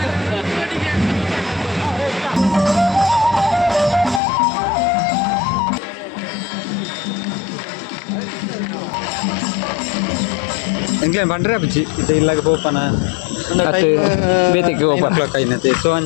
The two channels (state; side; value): drops out; right; at 4.2 s